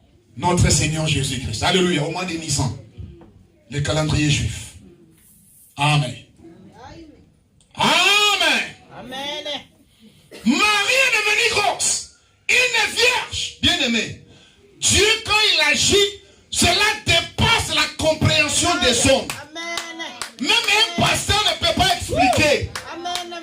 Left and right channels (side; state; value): both; identical; correlation 1.00